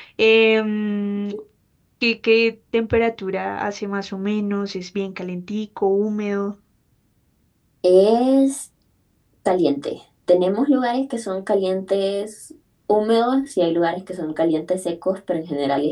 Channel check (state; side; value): identical; both; correlation 1.00